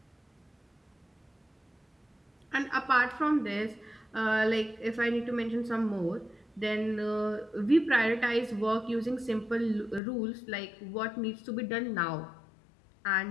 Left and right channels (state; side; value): drops out; right; at 10.0 s